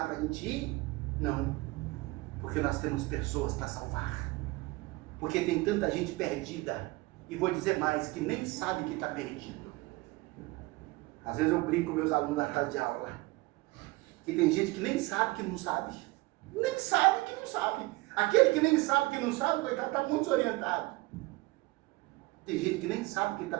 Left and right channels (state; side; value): quieter; left; 22.0 dB